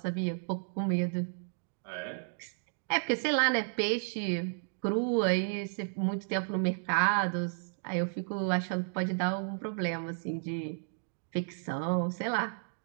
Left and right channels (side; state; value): left; silent; digital silence